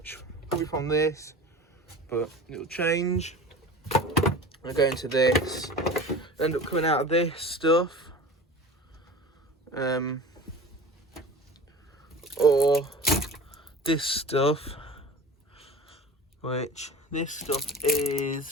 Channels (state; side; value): normal; both; correlation 0.36